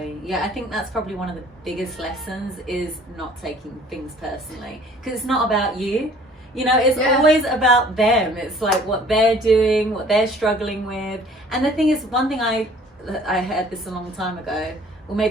yeah, I think that's probably one of the biggest lessons, is not taking things personally, because it's not about you, you know, it's always about them. It's like what they're doing, what they're struggling with. And the thing is, one thing I heard this a long time ago, or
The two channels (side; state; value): both; normal; correlation 0.53